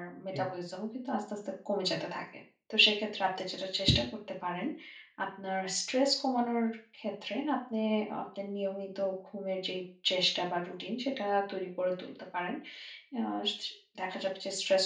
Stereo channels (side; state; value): both; identical; correlation 1.00